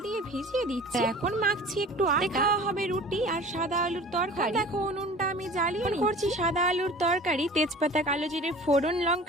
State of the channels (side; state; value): both; normal; correlation 0.42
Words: দিয়ে ভিজিয়ে দিচ্ছি। এখন মাখছি একটু আটা, খাওয়া হবে রুটি আর সাদা আলুর তরকারি। দেখো উনুনটা আমি জ্বালিয়ে করছি সাদা আলুর তরকারি। তেজপাতা, কালো জিরে ফোড়ন,